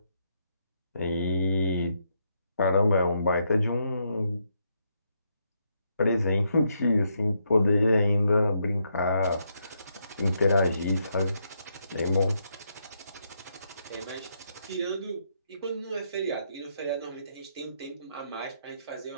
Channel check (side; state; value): both; inverted; correlation -0.78